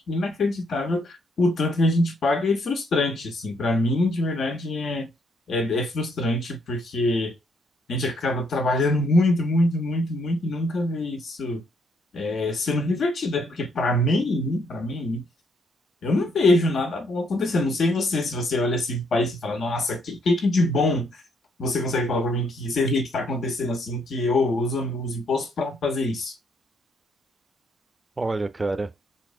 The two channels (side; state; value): both; normal; correlation 0.71